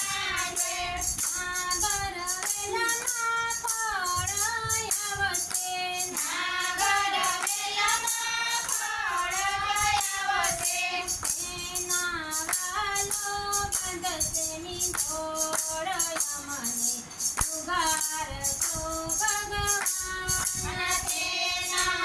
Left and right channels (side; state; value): both; identical; correlation 1.00